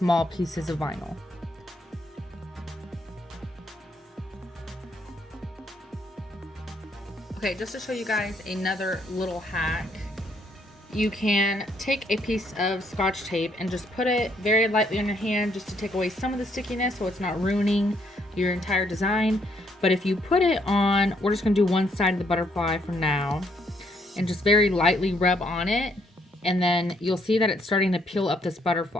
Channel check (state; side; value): normal; both; correlation 0.71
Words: pieces of vinyl. Okay, just to show you guys another little hack, you can take a piece of Scotch tape and just put it very lightly on your hand just to take away some of the stickiness so it's not ruining your entire design. But if you put it on, we're just gonna do one side of the butterfly for now, and just very lightly rub on it, and then you'll see that it's starting to peel up this